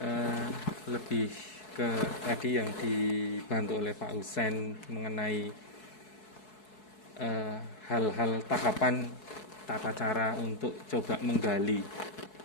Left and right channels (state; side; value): late; right; 4.7 ms